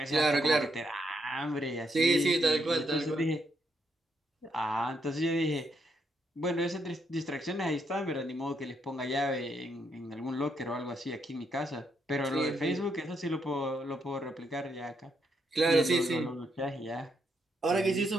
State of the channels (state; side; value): normal; both; correlation 0.77